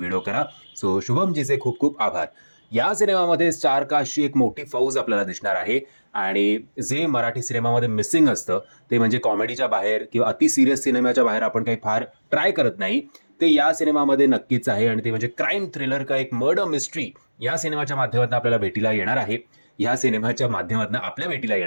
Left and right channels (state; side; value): inverted; both; correlation -1.00